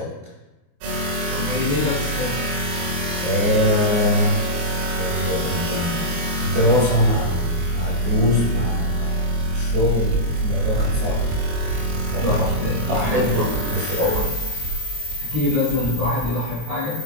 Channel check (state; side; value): late; left; 24 ms